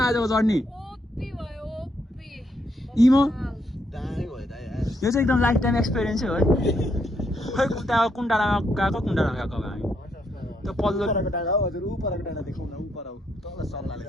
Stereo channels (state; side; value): normal; both; correlation 0.76